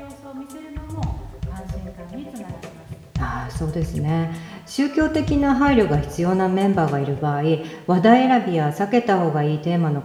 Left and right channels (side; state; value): both; identical; correlation 1.00